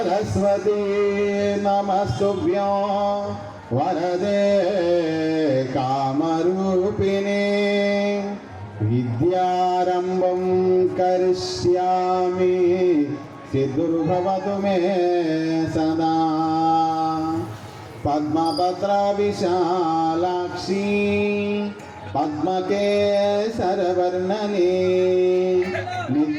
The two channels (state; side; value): identical; both; correlation 1.00